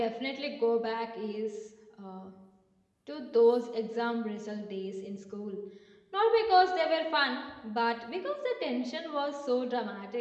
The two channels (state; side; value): identical; both; correlation 1.00